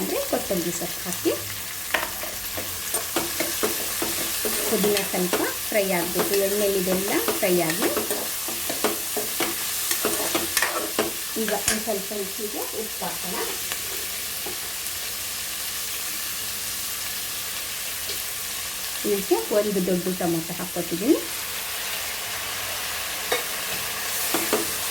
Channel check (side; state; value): right; noise; hum, 24 dB below the sound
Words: ಕೊತ್ತಂಬರಿ ಸೊಪ್ಪು ಹಾಕಿ. ಪುದೀನ ಸ್ವಲ್ಪ ಫ್ರೈ ಆಗಬೇಕು, ಎಣ್ಣೆಲಿದೆಲ್ಲ ಫ್ರೈ ಆಗಿ. ಈಗ ಒಂದು ಸ್ವಲ್ಪ ರುಚಿಗೆ ಉಪ್ಪು ಹಾಕೋಣ. ಇದಕ್ಕೆ 1 ದೊಡ್ಡ ಟೊಮೊಟೊ ಹಾಕ್ಕೊತಿದ್ದೀನಿ.